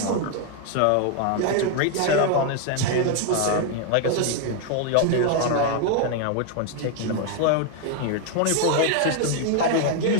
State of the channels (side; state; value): both; different; correlation 0.01